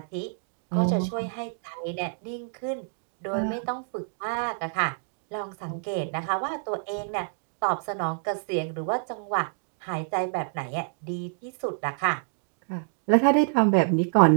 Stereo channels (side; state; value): left; silent; digital silence